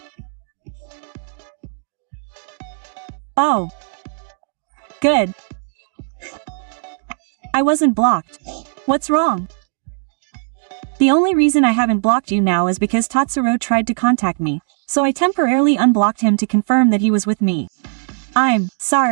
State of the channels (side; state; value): left; silent; 67 dB below the other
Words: Oh. Good. I wasn't blocked. What's wrong? The only reason I haven't blocked you now is because Tatsuro tried to contact me, so I temporarily unblocked him to confirm that he was with me. I'm